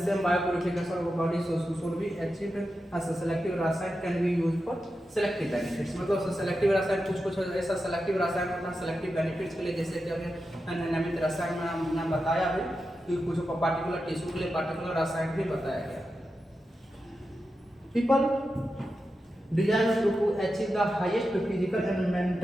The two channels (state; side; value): normal; both; correlation 0.90